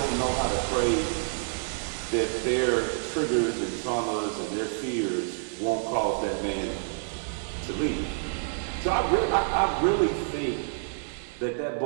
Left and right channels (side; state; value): left; silent; 58 dB below the other